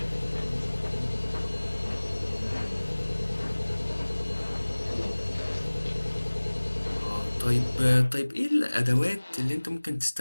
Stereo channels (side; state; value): both; inverted; correlation -1.00